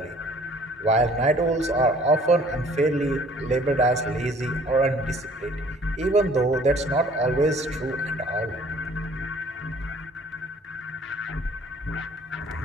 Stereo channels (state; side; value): normal; both; correlation 0.55